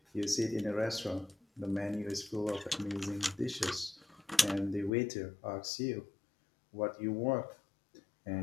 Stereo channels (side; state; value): right; drops out; at 4.9 s